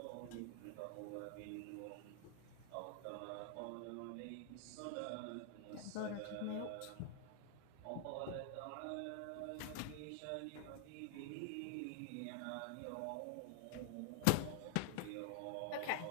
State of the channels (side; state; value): both; different; correlation 0.00